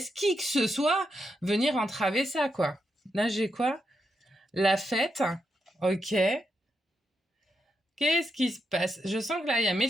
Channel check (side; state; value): both; normal; correlation 0.83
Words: qui que ce soit venir entraver ça quoi. Là j'ai quoi? La fête. Ok. Qu'est-ce qui se passe? Je sens que là, il y a mes